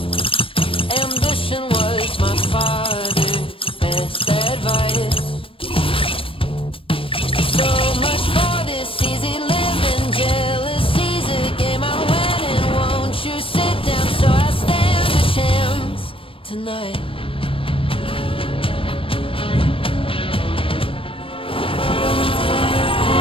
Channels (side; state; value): right; late; 0.26 ms